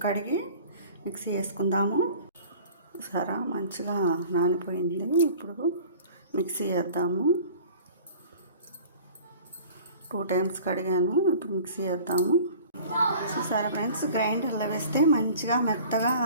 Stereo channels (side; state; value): both; inverted; correlation -0.45